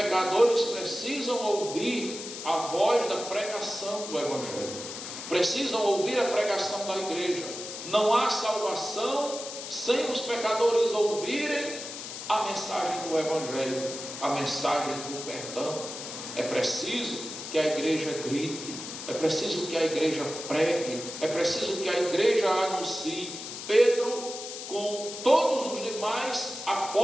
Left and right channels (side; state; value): left; noise; hiss, 9 dB below the sound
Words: precisam ouvir a voz da pregação do Evangelho, precisam ouvir a pregação da igreja. Não há salvação sem os pecadores ouvirem a mensagem do Evangelho, a mensagem do perdão. É preciso que a igreja grite, é preciso que a igreja pregue, é preciso que a igreja anuncie. Pedro, com todos os demais